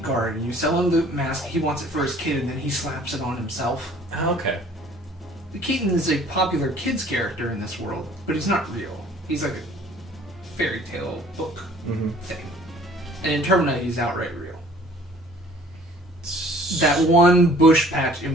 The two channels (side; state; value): both; normal; correlation 0.53